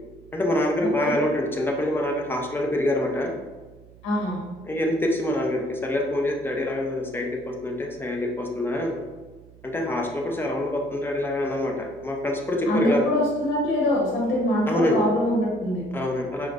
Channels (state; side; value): noise; right; hum, 23 dB below the sound